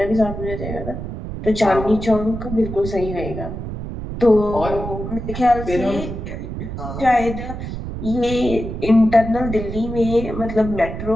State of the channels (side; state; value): right; noise; rumble, 7 dB below the sound